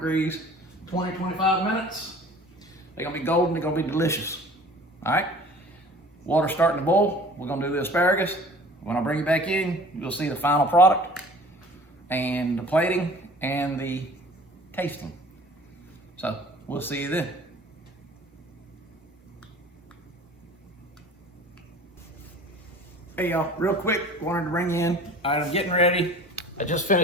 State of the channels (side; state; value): both; normal; correlation 0.46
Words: 20, 25 minutes. They're gonna be golden, they're gonna be delicious. All right, water's starting to boil. We're gonna do the asparagus. When I bring you back in, you'll see the final product and the plating and the tasting. So we'll see you then. Hey y'all, real quick, wanted to bring you in. All right, I'm getting ready. I just